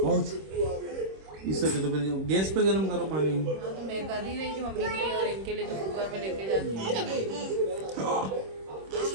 इससे तो फिर गैस पे गर्म करो पानी। हाँ तो मैं कर ही रही थी मम्मी की, और इनके लिए तो कुकर में लेके जाती हूँ।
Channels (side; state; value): left; late; 26 ms